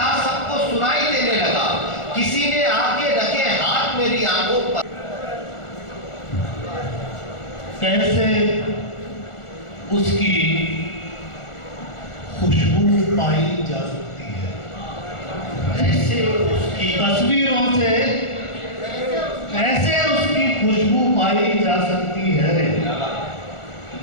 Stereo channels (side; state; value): right; late; 1.4 ms